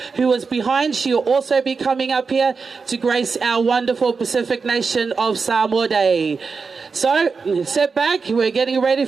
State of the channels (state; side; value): quieter; left; 4.9 dB